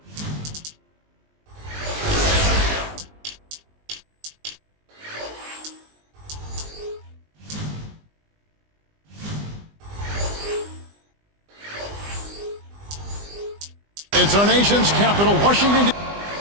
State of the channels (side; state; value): left; late; 20 ms